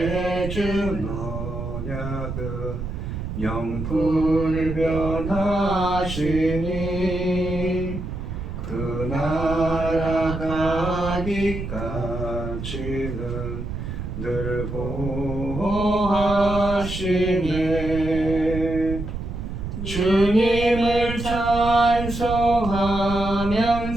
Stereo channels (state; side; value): noise; right; rumble, 6 dB below the sound